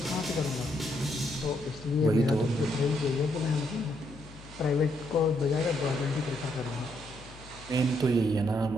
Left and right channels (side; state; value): left; noise; hum, 18 dB below the sound